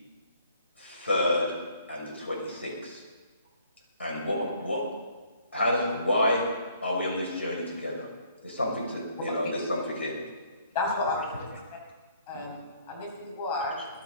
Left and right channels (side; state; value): both; inverted; correlation -0.62